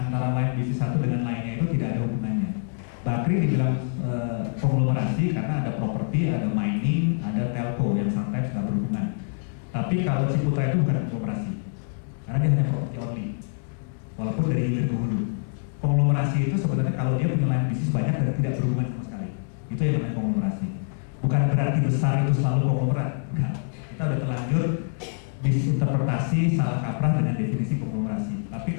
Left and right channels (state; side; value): silent; right; digital silence